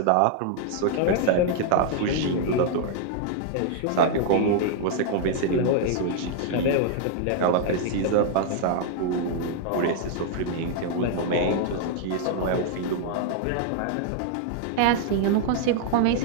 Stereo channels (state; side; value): different; both; correlation 0.00